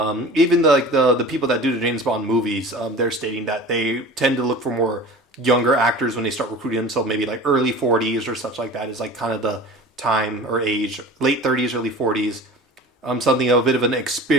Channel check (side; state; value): both; normal; correlation 0.38